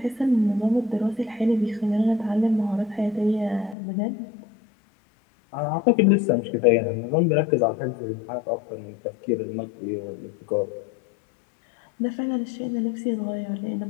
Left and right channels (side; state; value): right; drops out; at 3.8 s